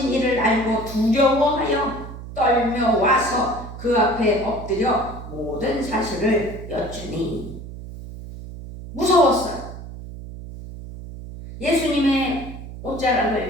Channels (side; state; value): right; noise; hum, 12 dB below the sound